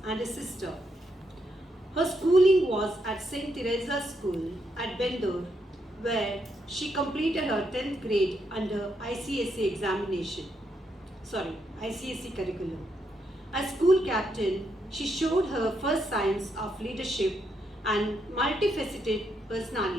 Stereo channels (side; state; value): both; normal; correlation 0.79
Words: and a sister. Her schooling was at St. Teresa's School at Bendur, where she completed her 10th grade under ICSE curriculum. As school captain, she showed her first signs of leadership and multifaceted